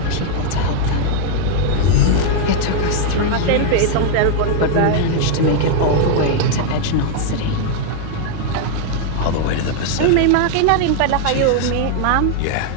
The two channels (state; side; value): different; both; correlation 0.00